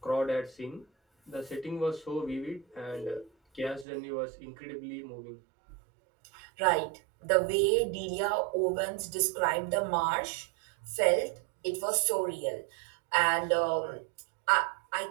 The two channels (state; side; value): drops out; left; at 3.9 s